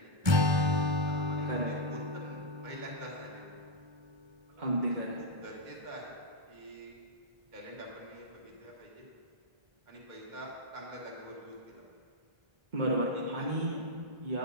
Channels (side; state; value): left; late; 1.3 ms